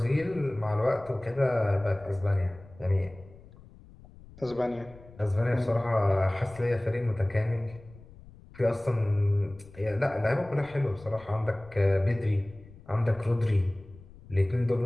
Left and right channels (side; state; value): left; noise; rumble, 21 dB below the sound